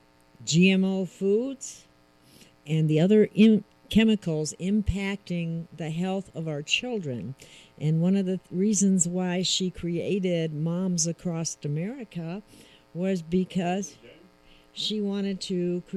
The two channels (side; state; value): both; identical; correlation 1.00